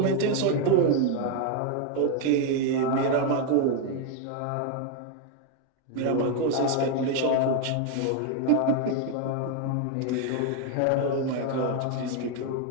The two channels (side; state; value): both; different; correlation 0.00